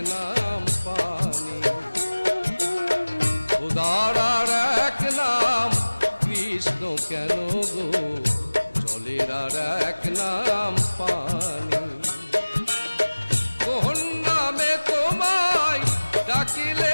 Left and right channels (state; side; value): inverted; both; correlation -1.00